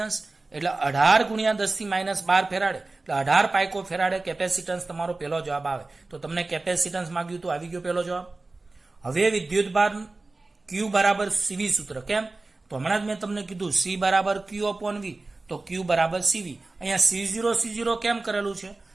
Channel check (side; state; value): left; quieter; 3.3 dB